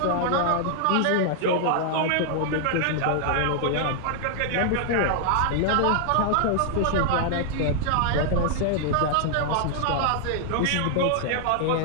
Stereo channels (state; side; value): different; both; correlation 0.00